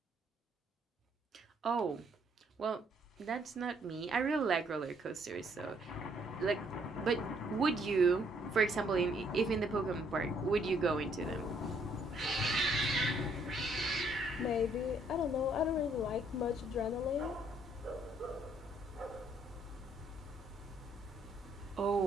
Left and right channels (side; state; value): both; normal; correlation 0.67